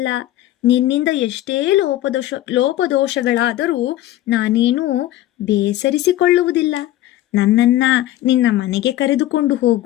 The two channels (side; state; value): right; quieter; 14.4 dB